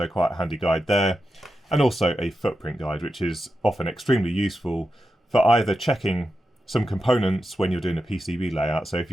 quite a handy guide there. And also a footprint guide, which is often extremely useful for either checking some components when you're doing a PCB layout. So if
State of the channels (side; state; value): both; normal; correlation 0.89